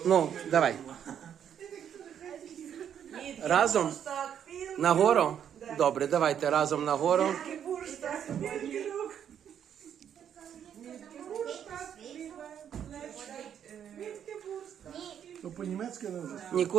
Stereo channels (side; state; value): left; quieter; 9.0 dB